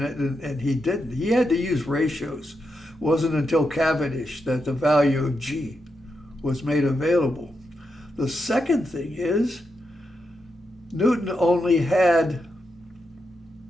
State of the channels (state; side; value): normal; both; correlation 0.85